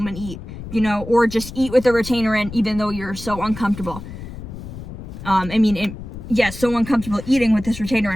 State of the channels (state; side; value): noise; left; rumble, 11 dB below the sound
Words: and eat, you know, or just eat with a retainer in even though you're so uncomfortable. So uncomfortable eating with this retainer